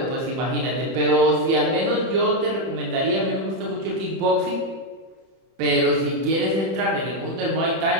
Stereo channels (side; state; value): left; late; 31 ms